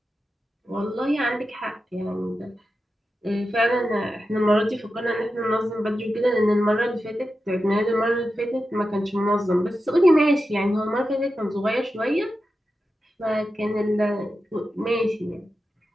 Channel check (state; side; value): normal; both; correlation 0.91